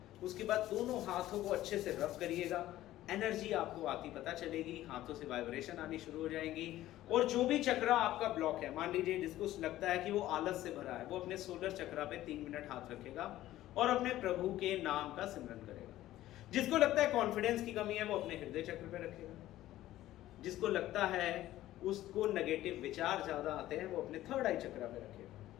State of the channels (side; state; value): right; quieter; 14.6 dB